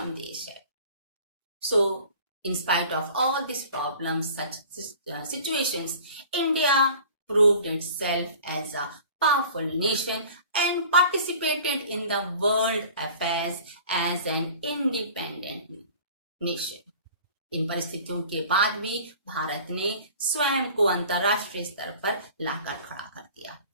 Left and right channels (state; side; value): inverted; both; correlation -0.45